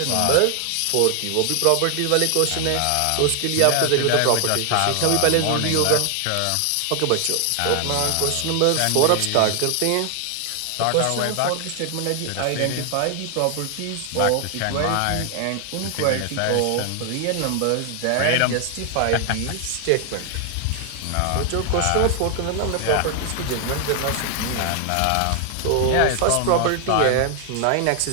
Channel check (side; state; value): both; different; correlation 0.00